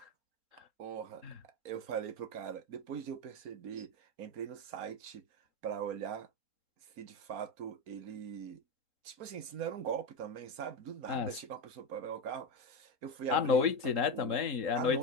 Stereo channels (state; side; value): late; left; 3.7 ms